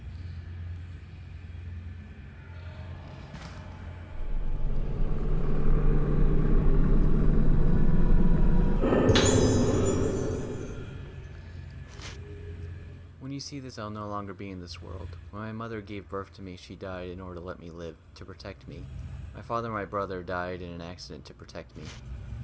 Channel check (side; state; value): both; identical; correlation 1.00